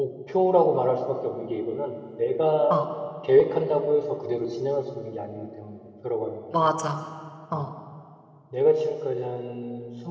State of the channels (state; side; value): identical; both; correlation 1.00